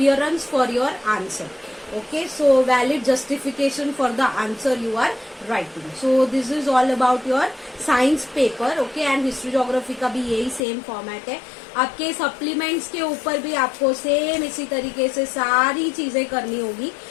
for your answer. Okay, so valid justification for the answer you are writing. So this is all about your science paper. Okay, and history geography का भी यही सेम फॉर्मेट है। आपके सप्लीमेंट्स के ऊपर भी आपको सेम इसी तरीके से सारी चीजें करनी होगी।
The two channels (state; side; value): drops out; right; at 10.6 s